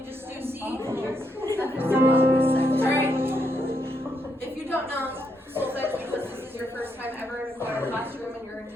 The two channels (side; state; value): both; normal; correlation 0.78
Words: just do C. All right, if you don't know solfege because this is your first time ever in a choir classroom in your